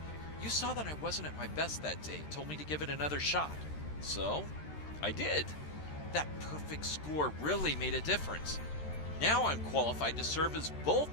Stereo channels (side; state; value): right; late; 13 ms